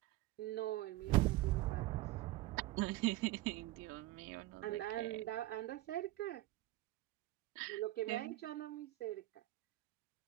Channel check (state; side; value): quieter; left; 17.0 dB